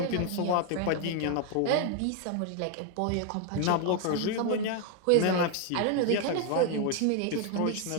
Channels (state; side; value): different; both; correlation 0.01